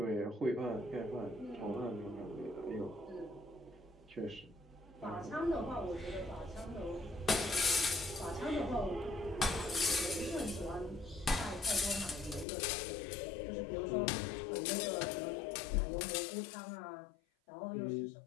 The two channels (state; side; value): drops out; right; at 12.5 s